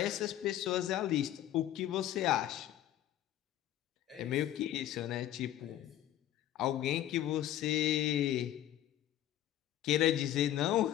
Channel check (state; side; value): quieter; right; 12.5 dB